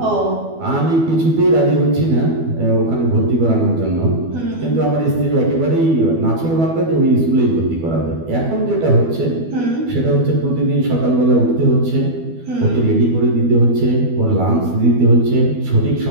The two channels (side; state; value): left; late; 12 ms